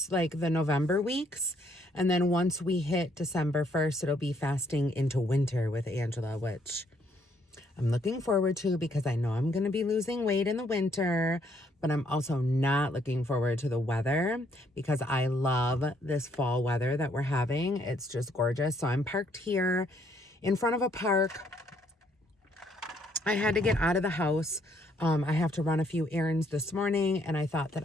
like the November weeks. And then once we hit December 1st, it'll be Fasting into Winter with Angela, which I'm looking forward to because I know I'm going to be losing weight in the winter, but I'm also not looking forward to the weather because I love this fall weather that we're having. It's just gorgeous. So I'm parked here in front of a park. I had to get out of the house. I have to run a few errands this morning, and I thought that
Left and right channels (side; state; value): both; normal; correlation 0.69